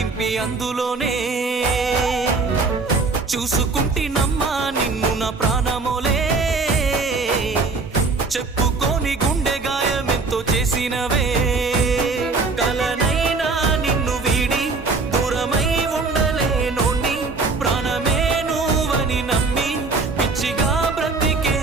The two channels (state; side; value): quieter; left; 4.0 dB